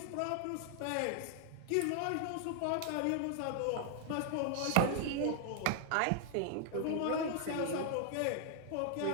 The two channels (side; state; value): both; different; correlation 0.00